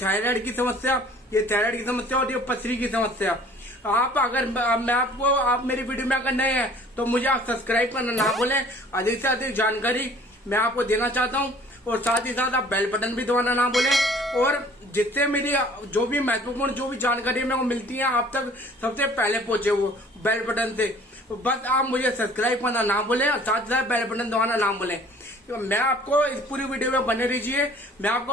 की समस्या, ये थायराइड की समस्या और ये पथरी की समस्या, आप अगर मैं आपको आप मेरी वीडियो में अगर नए हैं तो मुझे आप सब्सक्राइब करना ना भूलें। अधिक से अधिक जानकारी मैं आपको देना चाहता हूँ और साथ ही साथ आप बेल बटन भी दबाना ना भूलें। और जिससे मेरी जो भी महत्वपूर्ण जो भी जानकारी मेरे को मिलती है आप तक सबसे पहले पहुंचे वो बेल बटन से, बस आप मुझे सब्सक्राइब करना ना भूलें और साथ ही साथ बेल बटन दबाना ना भूलें। तो मैं आपको इस पूरी वीडियो में बने रहिए। मैं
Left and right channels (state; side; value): normal; both; correlation 0.52